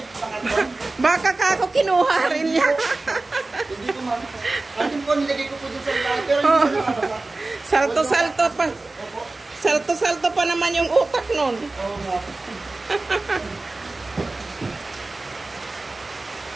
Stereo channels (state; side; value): quieter; left; 3.2 dB